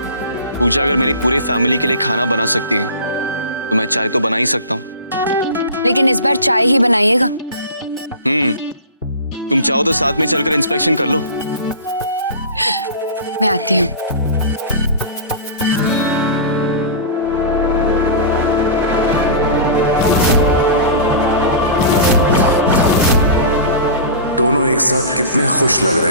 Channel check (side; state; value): both; inverted; correlation -0.34